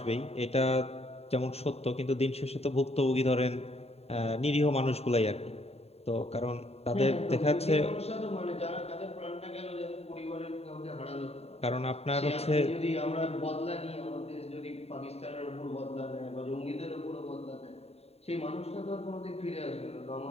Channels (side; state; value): right; late; 0.30 ms